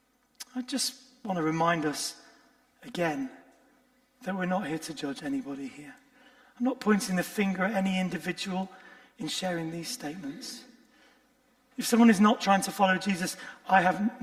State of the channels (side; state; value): both; identical; correlation 1.00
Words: I just want to remind us again that we're not here to judge anybody here. I'm not pointing the finger at any individual in sharing these statements. If someone is not trying to follow Jesus, I have